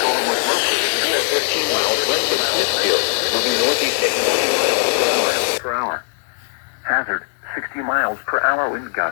was located 15 miles west of Smithfield, moving northeast at 90 miles per hour. Hazard, 60 miles per hour wind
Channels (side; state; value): right; silent; digital silence